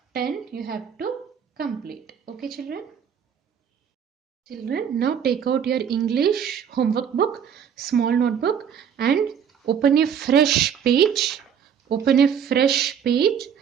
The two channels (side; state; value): left; quieter; 8.0 dB